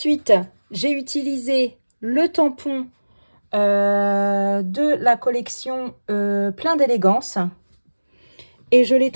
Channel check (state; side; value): inverted; both; correlation -1.00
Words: j'ai utilisé le tampon de la collection Plein d'élégance. Et je l'ai